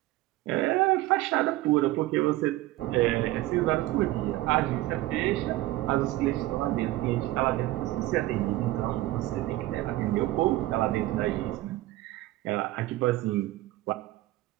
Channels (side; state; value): left; quieter; 17.1 dB